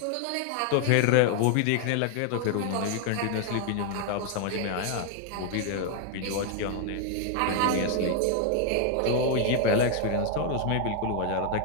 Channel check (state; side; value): different; both; correlation 0.00